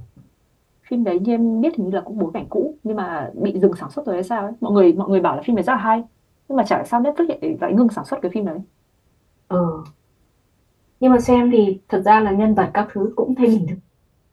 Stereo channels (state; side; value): identical; both; correlation 1.00